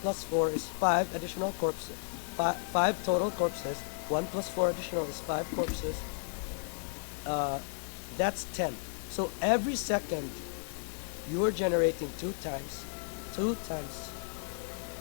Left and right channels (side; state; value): right; silent; digital silence